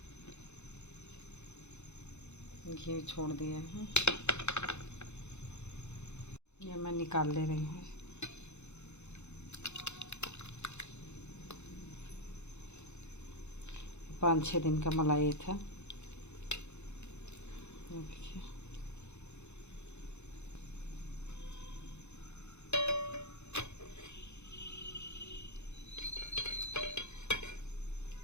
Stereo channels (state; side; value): late; right; 0.82 ms